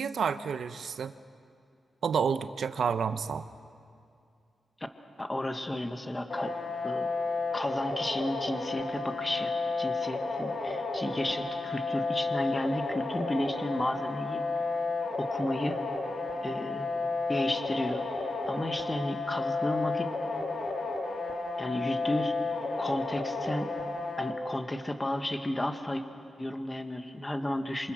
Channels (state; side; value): normal; both; correlation 0.89